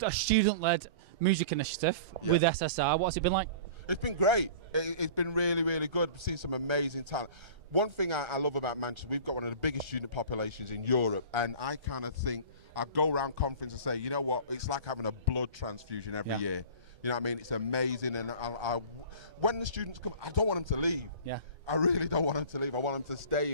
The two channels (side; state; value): left; late; 1.3 ms